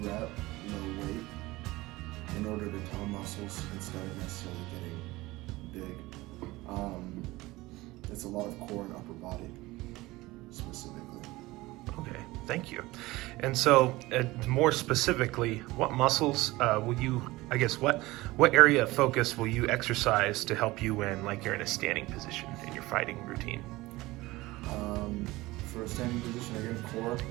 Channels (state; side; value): quieter; left; 19.8 dB